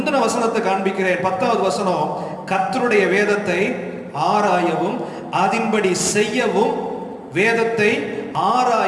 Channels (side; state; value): both; identical; correlation 1.00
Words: வசனத்தை காண்பிக்கிறேன். 10வது வசனம். கர்த்தருடைய வேதத்தை ஆராயவும் அதின்படி செய்யவும், வேதத்தை